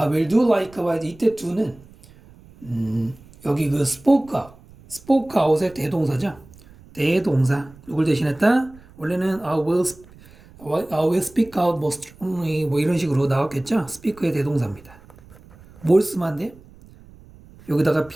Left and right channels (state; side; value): noise; right; rumble, 23 dB below the sound